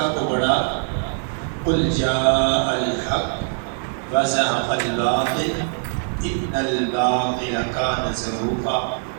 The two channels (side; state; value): left; silent; digital silence